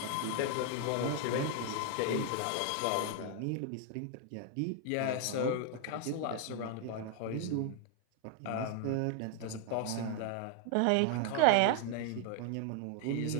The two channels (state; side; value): different; both; correlation 0.00